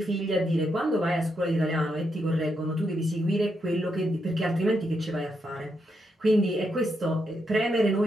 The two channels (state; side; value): normal; both; correlation 0.81